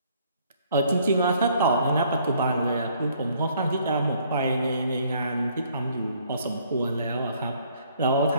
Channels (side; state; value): both; inverted; correlation -0.63